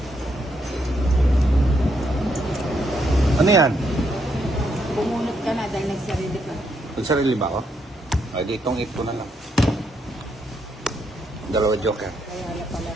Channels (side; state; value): both; normal; correlation 0.76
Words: Ano yan? Bumunot ka na dahil nagsarili ka. Nagsarili ba ako? Ay, ditong ito na lang. Dalawa joker. Kaya pala